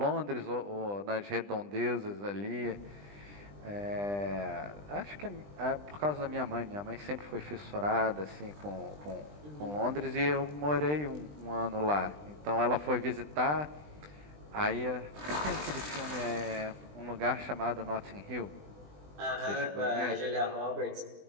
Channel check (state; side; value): late; left; 20 ms